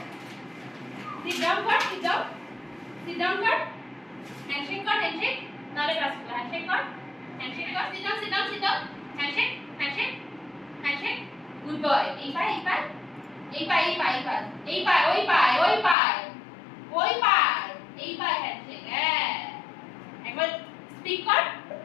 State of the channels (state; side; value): drops out; right; at 16.0 s